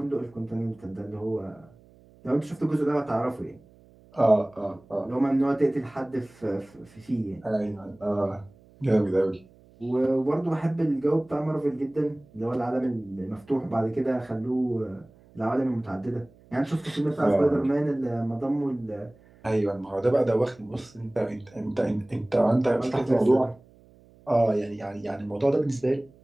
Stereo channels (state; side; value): noise; right; hum, 27 dB below the sound